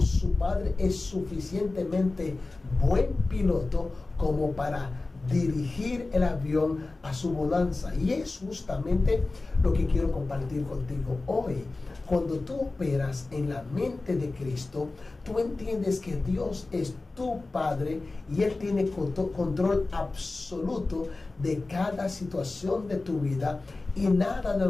su padre es suficientemente buen piloto como para dirigir el avión a su bonanza. Y es justamente lo que quiero compartir contigo hoy. Cuando tú operas en la mente de Cristo, tú entiendes que Dios es tu Padre y Él tiene control absoluto de cada situación de tu vida, y nada de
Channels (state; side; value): quieter; right; 3.3 dB